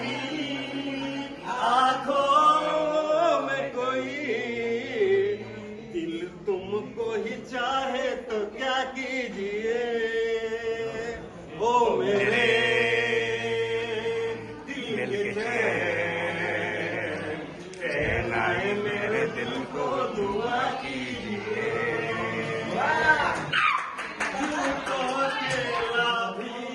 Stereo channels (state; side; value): identical; both; correlation 1.00